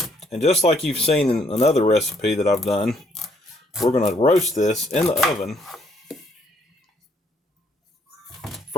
And just like you've seen in another recipe that I've done, we're going to roast this in the oven.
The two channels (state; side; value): normal; both; correlation 0.68